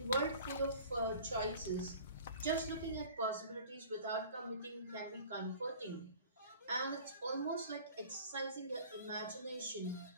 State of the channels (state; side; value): inverted; both; correlation -0.45